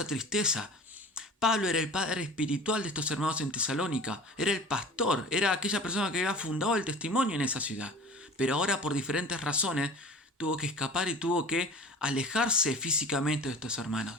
tristeza. Pablo era el padre espiritual de estos hermanos en Tesalónica, era el pastor, era aquella persona que había fundado el testimonio en esa ciudad. Pero ahora, por diferentes razones, tuvo que escapar y tuvo que alejarse físicamente de estos hermanos.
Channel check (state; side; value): normal; both; correlation 0.39